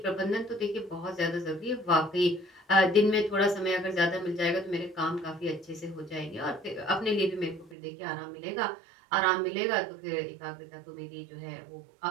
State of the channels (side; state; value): left; drops out; at 7.8 s